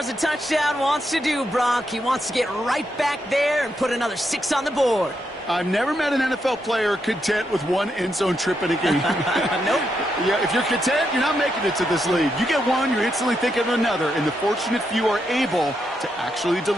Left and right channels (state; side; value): normal; both; correlation 0.82